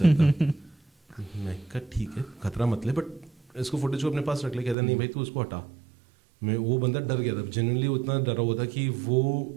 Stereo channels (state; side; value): drops out; left; at 4.8 s